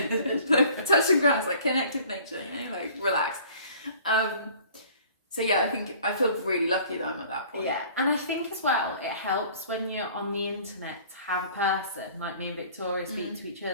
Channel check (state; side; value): inverted; both; correlation -0.50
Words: touch some grass, like, connect with nature, you know, like, relax. So yeah, I think I feel really lucky that I'm at that point. Yeah, and I think as well, it helps when you're on the internet to have a person like me and Victoria speak to each